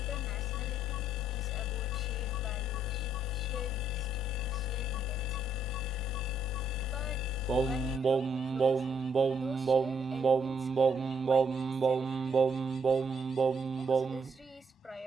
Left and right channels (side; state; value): both; normal; correlation 0.72